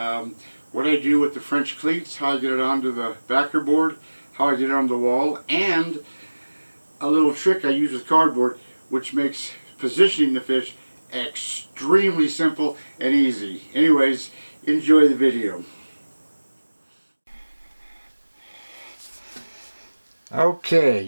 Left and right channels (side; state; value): both; inverted; correlation -1.00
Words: What I do with the French cleats, how I get it onto the backer board, how I get it on the wall, and a little trick I use with cardboard which makes positioning the fish extremely simple and easy. Anyways, enjoy the video. Okay,